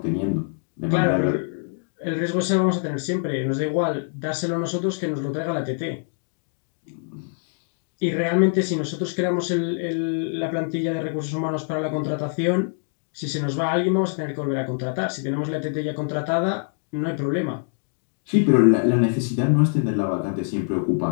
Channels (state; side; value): silent; right; digital silence